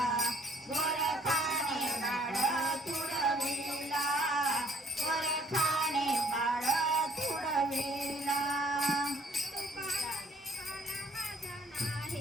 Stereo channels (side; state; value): both; normal; correlation 0.60